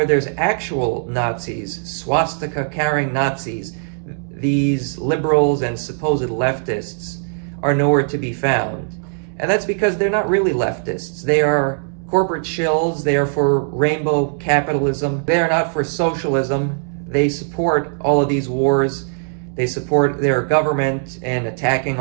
there's actual Nazis, swastika-carrying Nazis, these liberals and supposed leftists are nowhere to be found. And that's because they're not really leftists. They are corporate shills. They are for rainbow capitalism. They are not for socialism. They support all of these wars. They support their government in attacking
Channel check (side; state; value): left; silent; digital silence